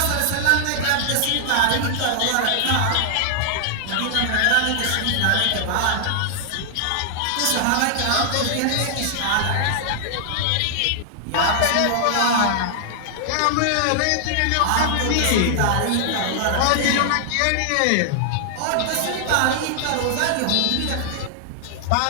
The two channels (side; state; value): both; different; correlation -0.01